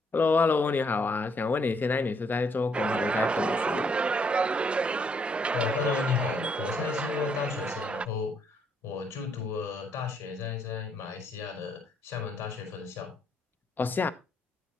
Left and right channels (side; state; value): both; normal; correlation 0.71